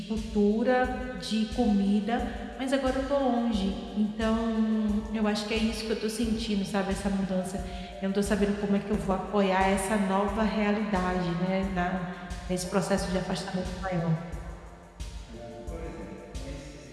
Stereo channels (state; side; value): identical; both; correlation 1.00